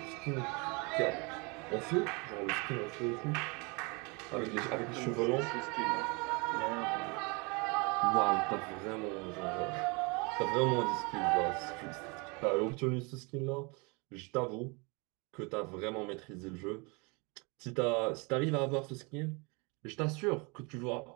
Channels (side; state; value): left; quieter; 29.6 dB